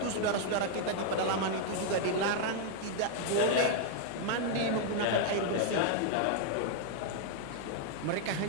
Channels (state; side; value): different; both; correlation 0.00